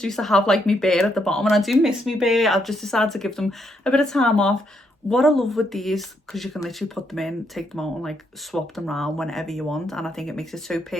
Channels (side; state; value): both; normal; correlation 0.76